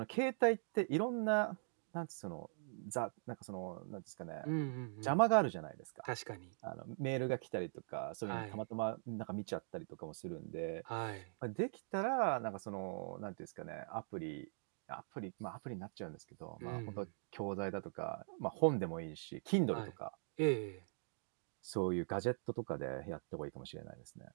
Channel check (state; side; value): silent; left; digital silence